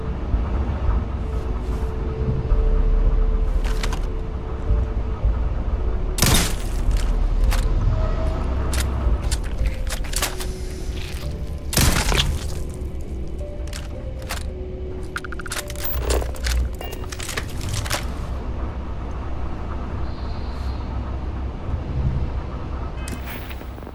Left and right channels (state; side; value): identical; both; correlation 1.00